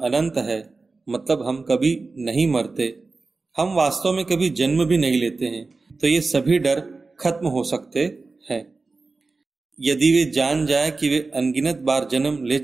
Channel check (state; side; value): quieter; left; 3.8 dB